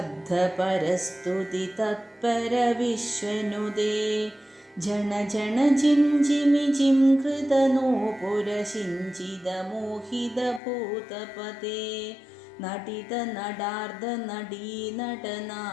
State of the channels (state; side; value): drops out; right; at 10.6 s